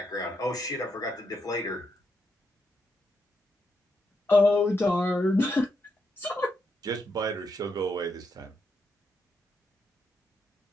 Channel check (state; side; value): normal; both; correlation 0.81